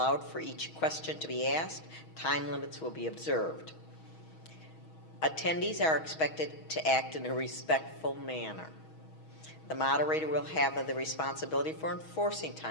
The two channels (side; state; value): right; late; 6.3 ms